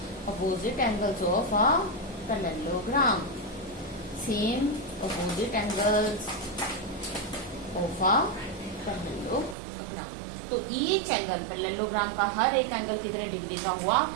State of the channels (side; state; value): left; drops out; at 9.6 s